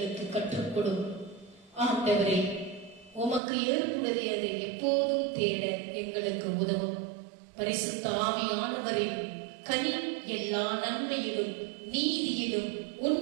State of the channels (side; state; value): left; drops out; at 3.4 s